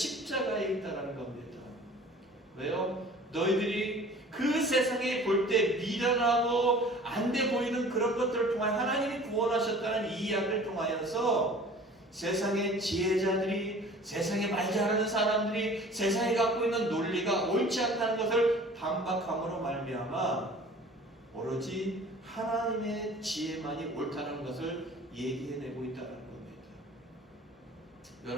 있다는 겁니다. 왜요? 너희들이 그 세상에 볼 때 미련하고 안 돼 보이는 그런 것들을 통하여 하나님이 구원하셨다는 이 이야기를 통하여서 세상의 지혜자들이, 세상에 말 잘하는 사람들이 세상에 갖고 있는 논리가 옳지 않다는 것을 반박함으로 말미암아 오로지 하나님의 지혜만이 옳다는 것을 얘기해내고 있다는 겁니다.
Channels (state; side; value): normal; both; correlation 0.46